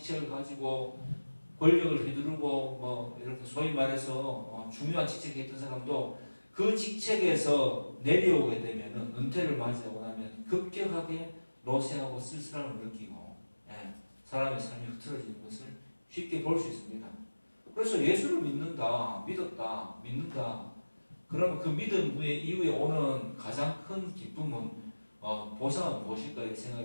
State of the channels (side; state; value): both; inverted; correlation -1.00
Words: 가지고 권력을 휘두르고 뭐 이렇게 소위 말해서 중요한 직책에 있던 사람도 그 직책에서 내려오게 되면은 은퇴를 맞이하고 나면 급격하게 노쇠하고 쓸쓸함을 느끼고 사람의 삶이 흐트러지는 것을 쉽게 볼 수 있습니다. 그래서 예수를 믿는다, 믿는다. 그러면 그 믿음 이후에 오는 가장 큰 기쁨은 보상은 무엇일까